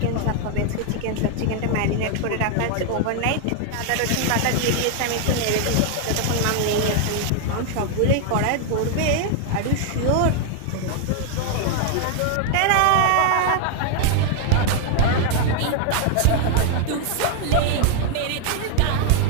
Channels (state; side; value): different; both; correlation 0.00